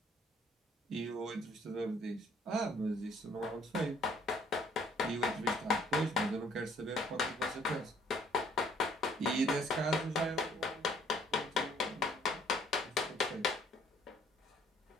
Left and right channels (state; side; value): normal; both; correlation 0.61